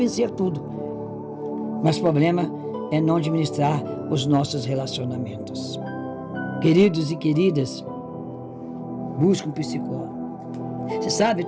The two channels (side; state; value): both; identical; correlation 1.00